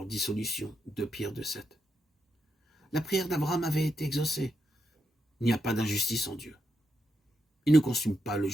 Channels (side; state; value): both; normal; correlation 0.82